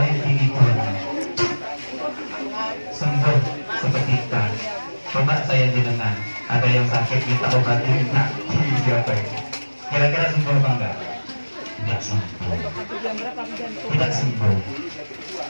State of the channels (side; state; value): both; inverted; correlation -1.00